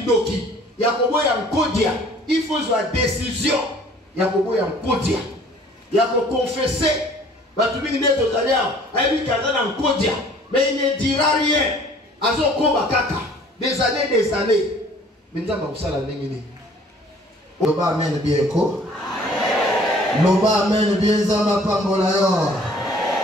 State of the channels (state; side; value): normal; both; correlation 0.54